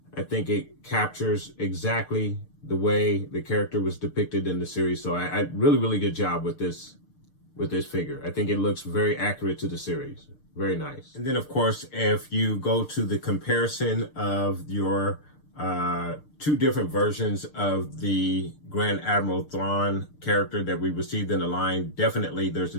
I think it captures exactly the way the character was depicted in the series. So I really, really good job with this figure. I think it looks very accurate to the series. Very nice. And then, of course, if you go to the comparison of your 2 different versions of the Grand Admiral Thrawn character that we received in the line, definitely there's a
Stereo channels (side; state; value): right; late; 6.7 ms